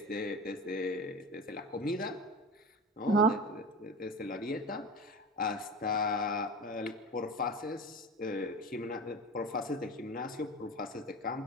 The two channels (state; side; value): normal; both; correlation 0.30